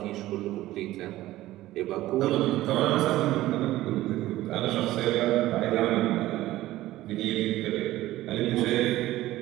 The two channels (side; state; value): left; quieter; 15.8 dB